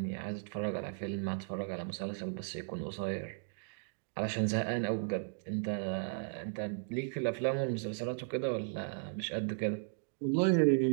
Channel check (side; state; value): left; silent; digital silence